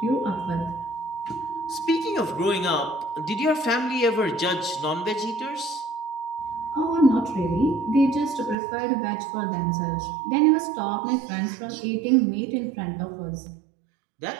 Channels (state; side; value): drops out; left; at 8.6 s